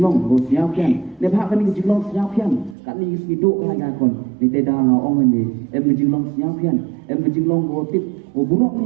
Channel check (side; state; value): left; drops out; at 2.8 s